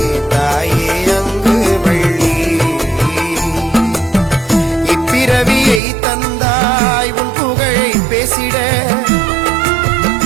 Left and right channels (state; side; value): drops out; left; at 5.8 s